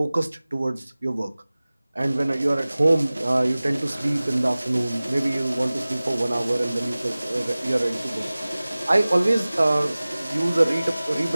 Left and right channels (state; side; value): inverted; both; correlation -0.99